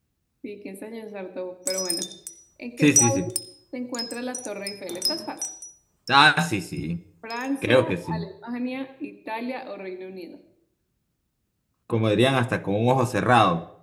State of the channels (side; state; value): both; identical; correlation 1.00